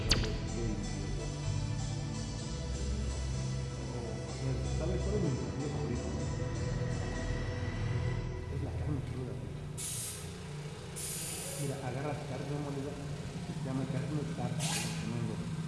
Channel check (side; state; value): both; identical; correlation 1.00